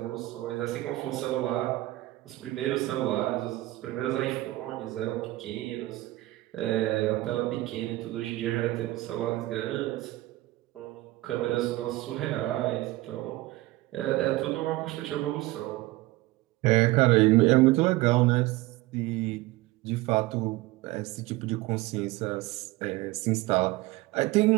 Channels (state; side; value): quieter; left; 18.6 dB